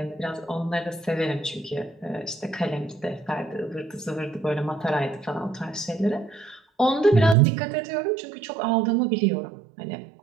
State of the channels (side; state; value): left; drops out; at 7.4 s